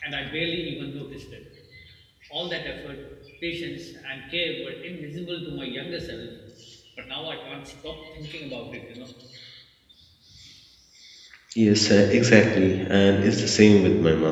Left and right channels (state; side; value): identical; both; correlation 1.00